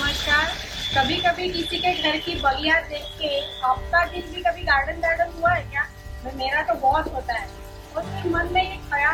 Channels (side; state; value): both; identical; correlation 1.00